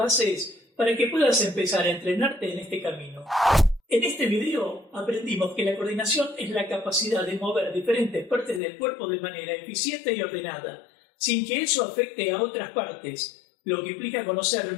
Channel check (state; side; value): drops out; right; at 8.6 s